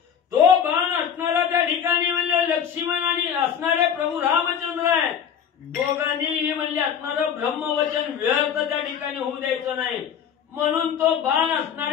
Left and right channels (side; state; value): right; quieter; 8.2 dB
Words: तो बाण असणारा त्या ठिकाणी म्हणजे लक्ष्मण आणि असणारे प्रभू रामचंद्र आहे, दोघांनीही म्हणजे असणारं ब्रह्मवचन व्यर्थ त्या ठिकाणी होऊ द्यायचं नाही, म्हणून तो बाण